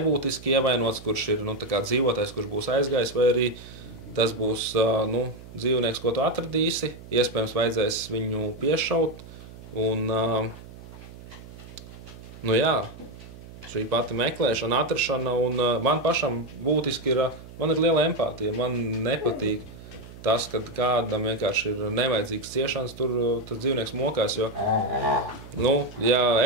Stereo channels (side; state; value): right; noise; hum, 17 dB below the sound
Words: ievainots, kurš ir, nu, tā kā dzīvotais, kurš būs aizgājis, vai arī tas būs, nu, dzīvnieks, ko tu atradīsi, iespējams vajadzēs viņu piešaut, un, nu jā, šī pati meklēšana, atrašana, un man pašam būtiski ir, man ir liela empātija, man nepatīk tas, kad kādam vienkārši ir nevajadzīgs ciešanas, tur tas dzīvnieks mokās, jo, nu, ja